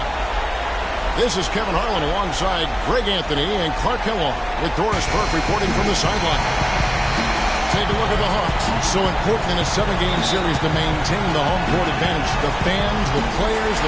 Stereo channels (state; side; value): identical; both; correlation 1.00